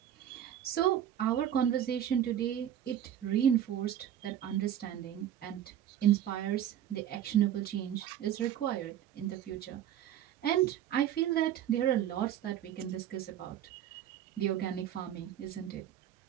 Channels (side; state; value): left; quieter; 10.7 dB